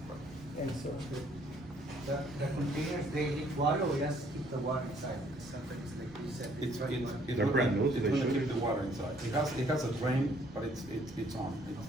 And so, The containers, they leak water or just keep the water inside? Because sometimes, like you said, It's They're brand new, so It's they gonna should. keep the water inside. It has a drain, but it's on.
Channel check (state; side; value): normal; both; correlation 0.63